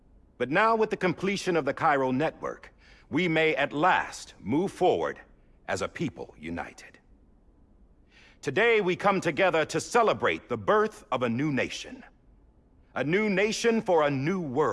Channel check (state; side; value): identical; both; correlation 1.00